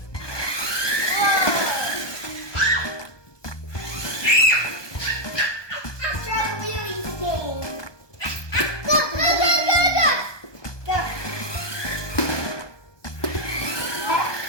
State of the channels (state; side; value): late; right; 1.2 ms